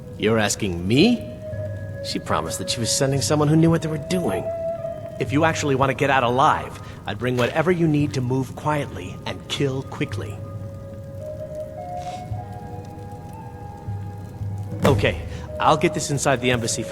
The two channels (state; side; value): identical; both; correlation 1.00